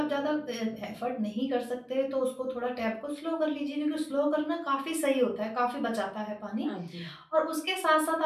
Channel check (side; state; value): both; identical; correlation 1.00